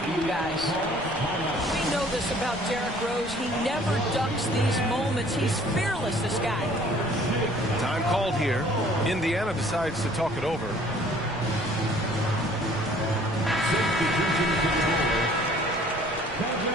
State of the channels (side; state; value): left; noise; rumble, 17 dB below the sound